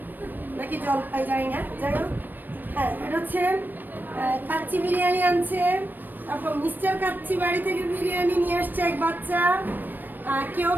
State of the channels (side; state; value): left; late; 0.091 ms